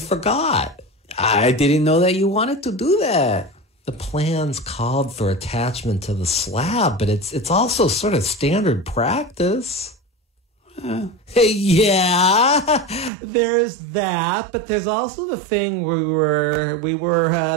I didn't know that you wanted to do that. The plans called for attachment to the slab, but it's also sort of standard practice. Yeah, there's that, but there's also the thing where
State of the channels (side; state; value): left; drops out; at 13.1 s